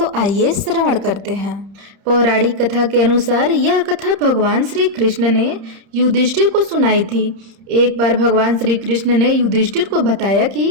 आइए श्रवण करते हैं। पौराणिक कथा के अनुसार यह कथा भगवान श्री कृष्ण ने युधिष्ठिर को सुनाई थी। एक बार भगवान श्री कृष्ण ने युधिष्ठिर को बताया कि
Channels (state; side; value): late; left; 31 ms